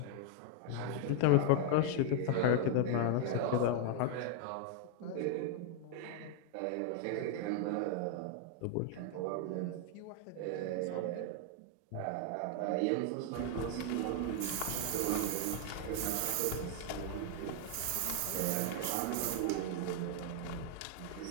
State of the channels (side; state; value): both; different; correlation 0.00